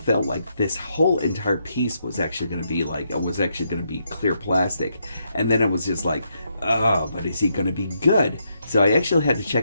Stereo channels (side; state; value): both; inverted; correlation -0.79